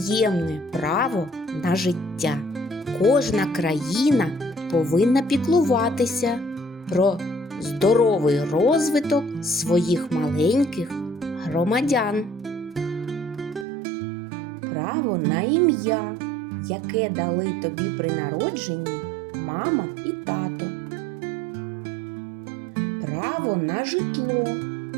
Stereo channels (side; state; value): left; drops out; at 13.7 s